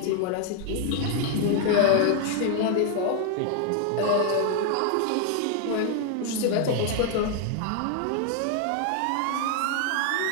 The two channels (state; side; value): different; both; correlation 0.00